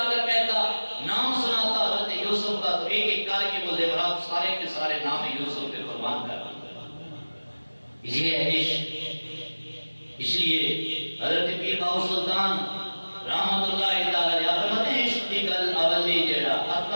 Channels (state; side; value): inverted; both; correlation -1.00